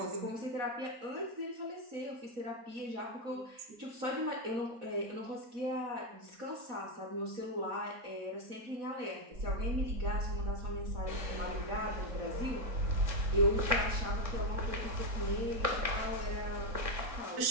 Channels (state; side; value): late; left; 4.1 ms